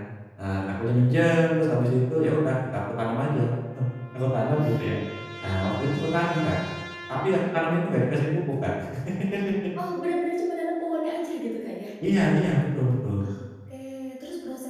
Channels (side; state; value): both; identical; correlation 1.00